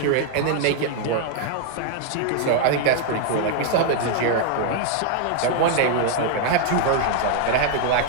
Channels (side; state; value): both; different; correlation 0.00